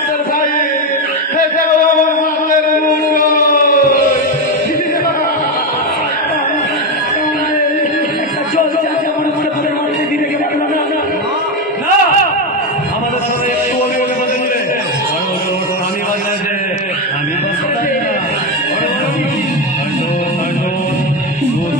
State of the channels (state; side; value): normal; both; correlation 0.12